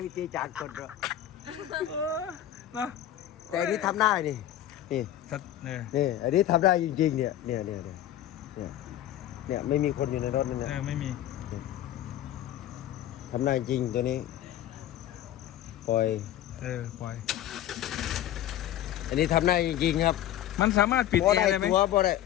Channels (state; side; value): quieter; right; 12.3 dB